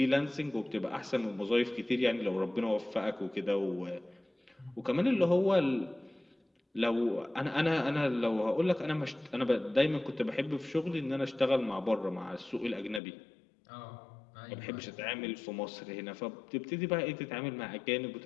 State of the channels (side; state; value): right; drops out; at 13.0 s